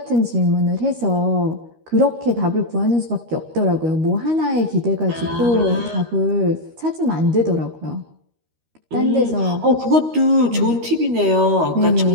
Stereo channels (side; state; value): left; late; 13 ms